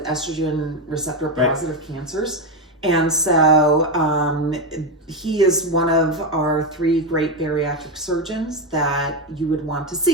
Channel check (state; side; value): normal; both; correlation 0.10